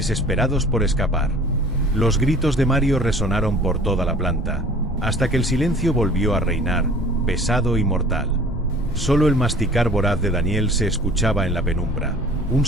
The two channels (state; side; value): normal; both; correlation 0.48